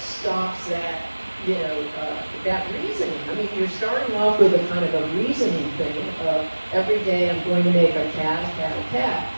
stops that, that reasoning. I mean, you're starting off with a kind of a reasoning thing of every day I'm going to make a cat, a cat, a cat.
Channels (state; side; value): inverted; both; correlation -1.00